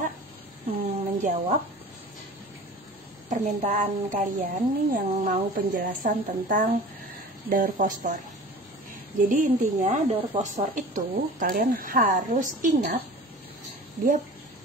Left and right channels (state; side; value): normal; both; correlation 0.40